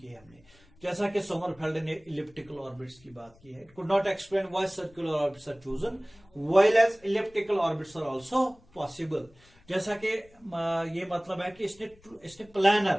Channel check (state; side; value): noise; left; rumble, 28 dB below the sound